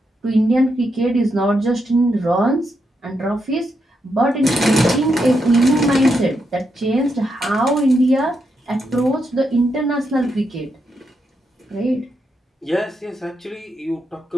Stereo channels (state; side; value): normal; both; correlation 0.82